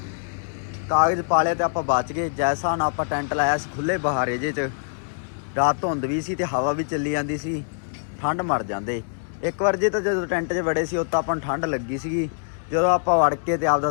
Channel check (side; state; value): right; silent; 62 dB below the other